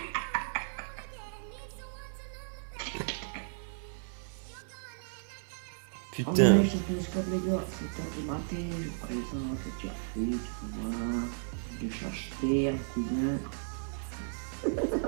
Oh Putain. non, je te laisse comme les gars, c'est tard du matin, je présente le café, tu vois, je cherche terre, cousin.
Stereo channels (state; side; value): silent; left; digital silence